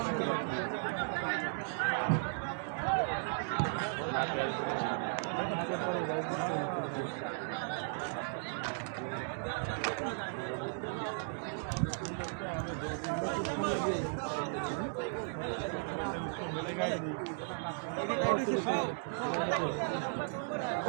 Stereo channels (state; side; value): silent; left; digital silence